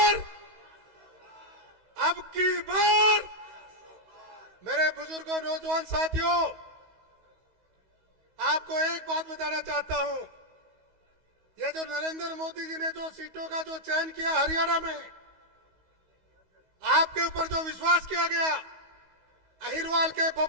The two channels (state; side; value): late; left; 16 ms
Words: मेरे बुजुर्गों, नौजवान साथियों, आपको एक बात बताना चाहता हूं। ये जो नरेंद्र मोदी जी ने जो सीटों का जो चयन किया हरियाणा में, आपके ऊपर जो विश्वास किया गया, अहिरवाल के